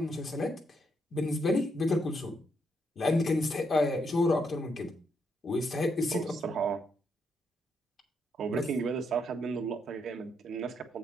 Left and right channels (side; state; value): both; normal; correlation 0.77